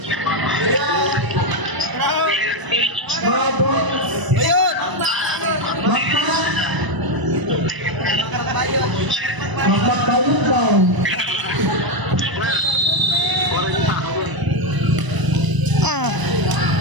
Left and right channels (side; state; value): left; late; 1.0 ms